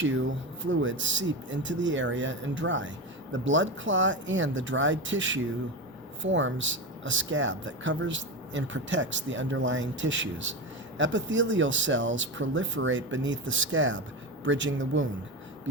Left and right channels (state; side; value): normal; both; correlation 0.20